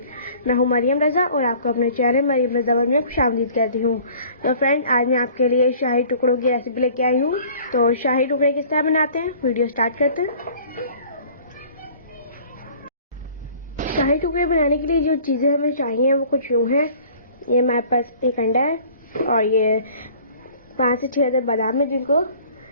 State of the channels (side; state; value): both; inverted; correlation -0.50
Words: मैं हूं मरियम रज़ा और आपको अपने चैनल मरियम रज़ा वर्ल्ड में खुशामदीद कहती हूं। तो फ्रेंड्स, आज मैं आपके लिए शाही टुकड़ों की रेसिपी लेके आई हूं। तो शाही टुकड़े किस तरह बनाते हैं, वीडियो स्टार्ट करते हैं। शाही टुकड़े बनाने के लिए जो चीज़ें हमें चाहिए वो कुछ यूँ हैं। ये हमारे पास एक अंडा है और ये 5 से 6 बादाम है जिनको